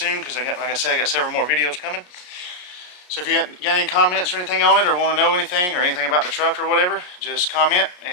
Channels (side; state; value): right; late; 33 ms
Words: because like I said, I got several more videos coming. So if you got any comments or anything on it, or want to know anything or anything about the truck or whatever, just comment